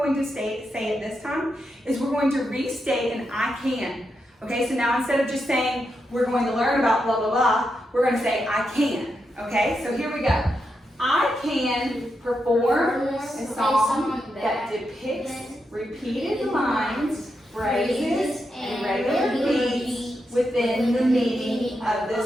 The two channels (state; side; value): normal; both; correlation 0.85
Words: to say it this time is we're going to restate an I can. Okay, so now instead of just saying we're going to learn about blah, blah, blah, we're going to say I can. Okay, so here we go. I can perform a song that depicts repeated lines, phrases, and regular beats within the meaning of